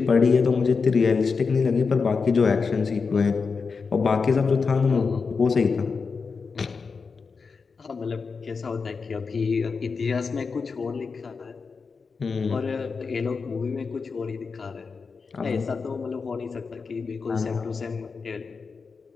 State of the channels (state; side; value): quieter; right; 5.0 dB